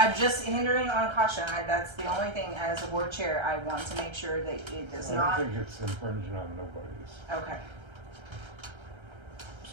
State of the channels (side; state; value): left; late; 1.3 ms